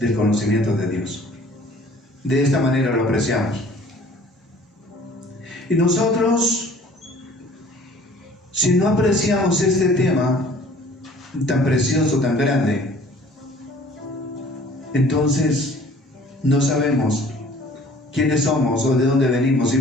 conocimiento de Dios. De esta manera lo apreciamos. Y nosotros, si no apreciamos este tema tan precioso, tan grande, entonces no sabemos quiénes somos o de dónde venimos y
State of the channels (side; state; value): both; normal; correlation 0.52